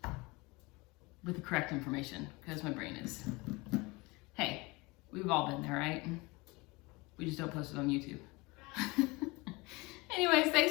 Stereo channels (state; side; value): quieter; right; 24.5 dB